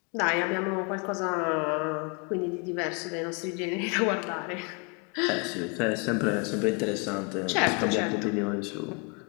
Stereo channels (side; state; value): right; quieter; 33.3 dB